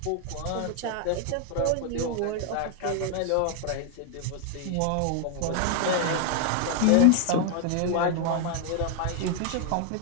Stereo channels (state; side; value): different; both; correlation 0.00